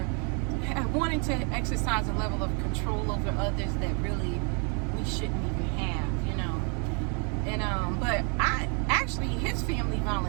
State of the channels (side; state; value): left; quieter; 36.6 dB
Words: wanting to exercise a level of control over others that really we shouldn't even have, you know. And but his family